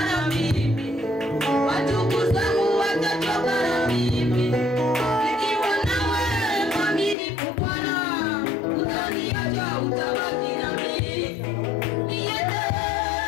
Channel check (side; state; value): right; drops out; at 7.2 s